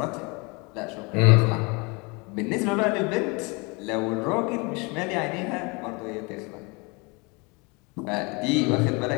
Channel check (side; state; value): right; quieter; 28.7 dB